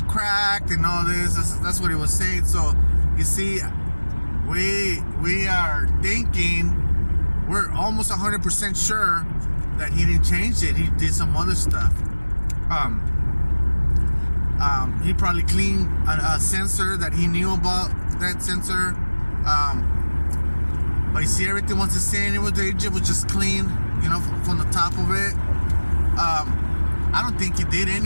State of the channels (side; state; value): both; inverted; correlation -1.00